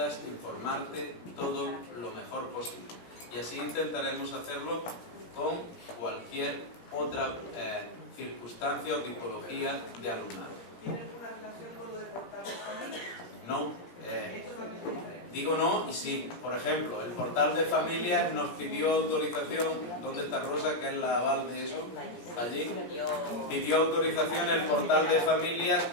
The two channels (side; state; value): right; late; 17 ms